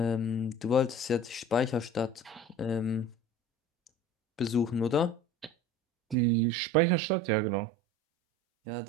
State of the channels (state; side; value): drops out; left; at 6.2 s